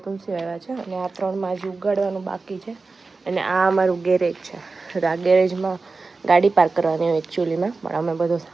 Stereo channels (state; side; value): quieter; left; 3.9 dB